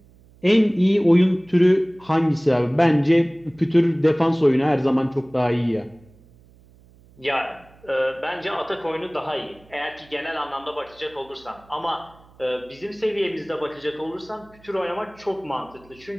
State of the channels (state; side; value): noise; right; hum, 27 dB below the sound